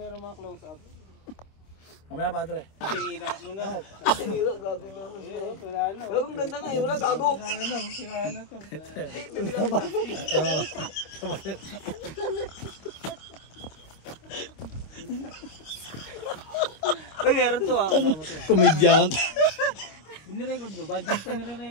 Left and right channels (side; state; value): right; late; 26 ms